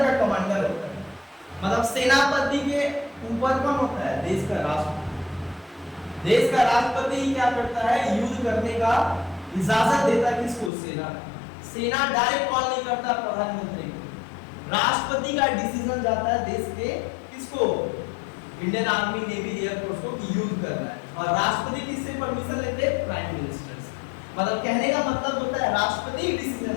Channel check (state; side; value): drops out; right; at 10.7 s